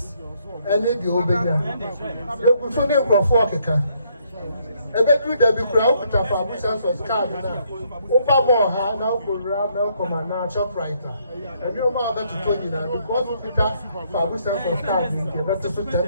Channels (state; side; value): inverted; both; correlation -0.70